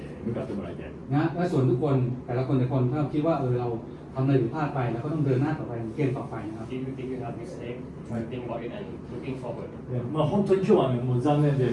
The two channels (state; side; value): identical; both; correlation 1.00